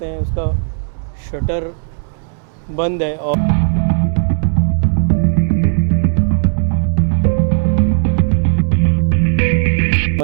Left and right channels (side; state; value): left; silent; 65 dB below the other